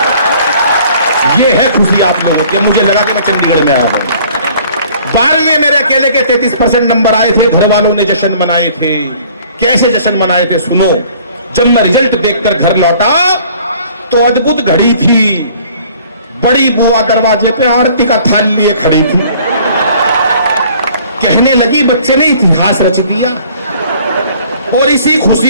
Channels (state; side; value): inverted; both; correlation -0.54